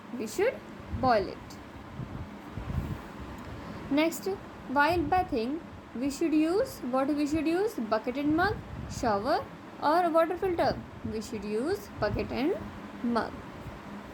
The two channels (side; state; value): both; identical; correlation 1.00